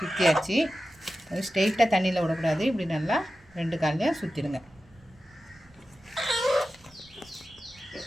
அது ஸ்ட்ரெயிட்டாக தண்ணியில் விடக்கூடாது. இப்படி நல்லா 2 கால்லையும் சுற்றிடுங்க.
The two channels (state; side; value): noise; right; rumble, 28 dB below the sound